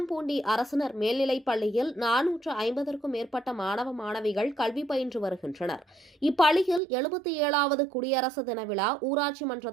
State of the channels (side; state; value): left; drops out; at 6.8 s